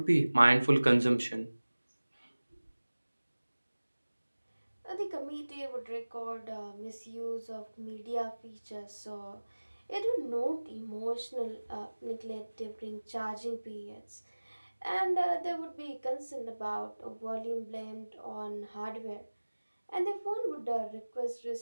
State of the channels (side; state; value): both; inverted; correlation -1.00